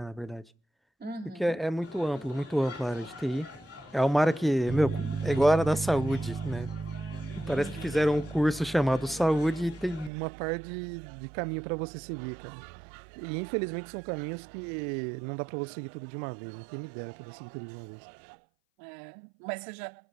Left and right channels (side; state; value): left; drops out; at 10.1 s